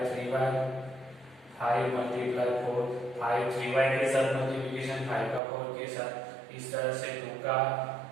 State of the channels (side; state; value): left; drops out; at 5.4 s